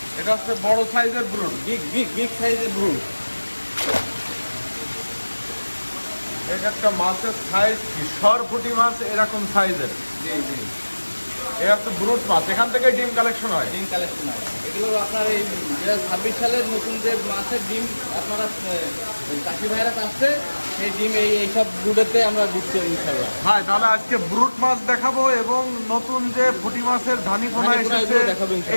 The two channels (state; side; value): inverted; both; correlation -1.00